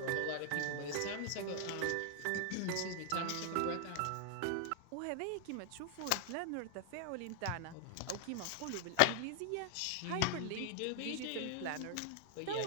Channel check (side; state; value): both; different; correlation 0.00